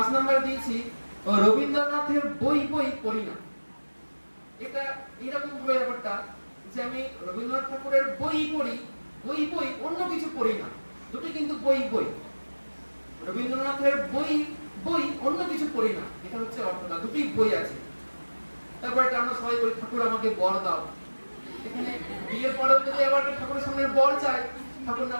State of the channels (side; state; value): both; inverted; correlation -1.00